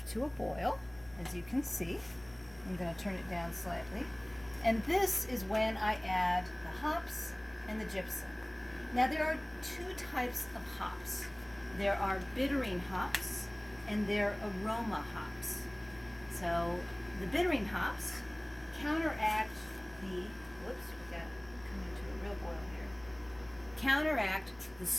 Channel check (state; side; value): noise; left; hum, 24 dB below the sound